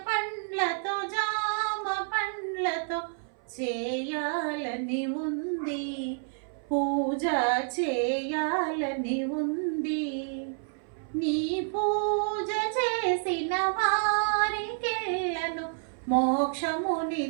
పండ్లతో జామ పండ్లతో చేయాలని ఉంది, పూజ చేయాలని ఉంది. నీ పూజ చేసిన వారికెల్లను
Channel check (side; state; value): left; silent; 58 dB below the other